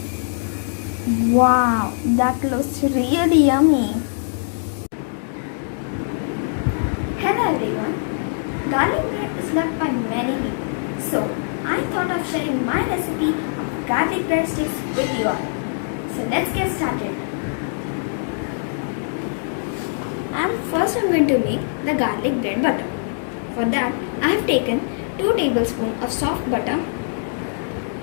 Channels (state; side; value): silent; right; digital silence